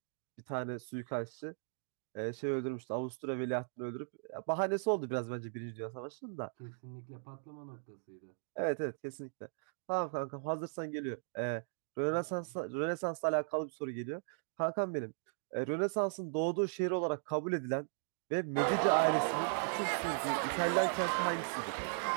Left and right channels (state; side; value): silent; left; digital silence